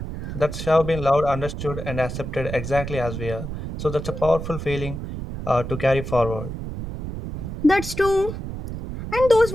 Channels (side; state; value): right; noise; rumble, 7 dB below the sound